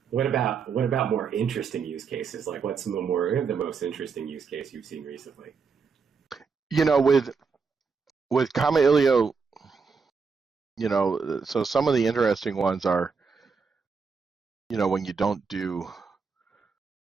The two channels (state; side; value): quieter; left; 5.3 dB